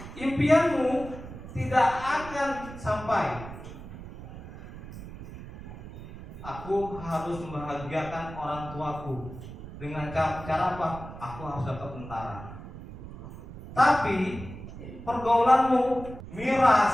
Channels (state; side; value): noise; right; rumble, 13 dB below the sound